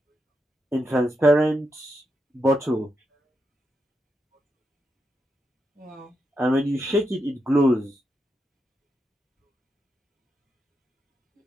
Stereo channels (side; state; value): both; normal; correlation 0.84